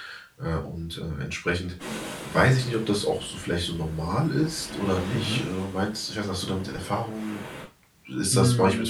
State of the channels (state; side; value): identical; both; correlation 1.00